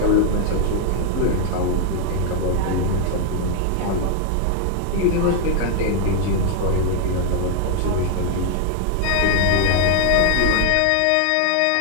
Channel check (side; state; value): both; different; correlation 0.00